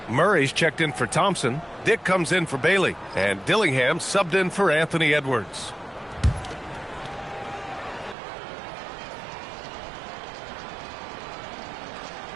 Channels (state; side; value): drops out; left; at 8.2 s